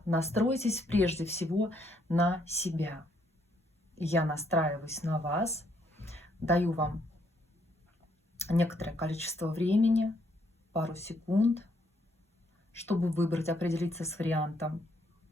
настройтесь прежде всего на себя. Я настраиваюсь на вас, даю вам некоторое количество времени, пару секунд, чтобы выбрать, определиться с вариантом.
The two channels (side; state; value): both; normal; correlation 0.71